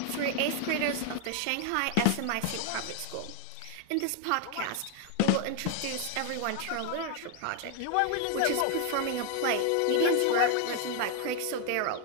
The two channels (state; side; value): different; both; correlation 0.00